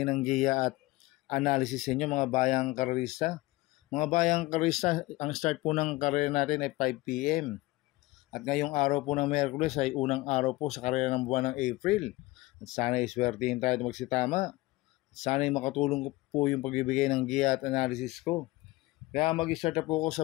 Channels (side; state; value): right; quieter; 20.3 dB